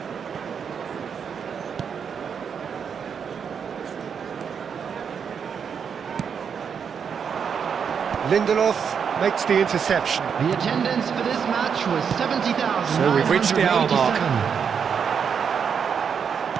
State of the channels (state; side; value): quieter; left; 6.9 dB